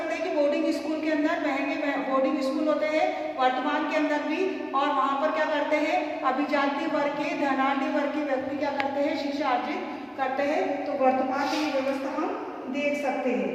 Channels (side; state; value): both; identical; correlation 1.00